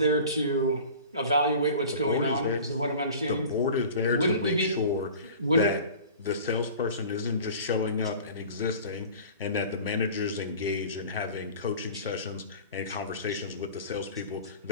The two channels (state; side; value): inverted; both; correlation -0.41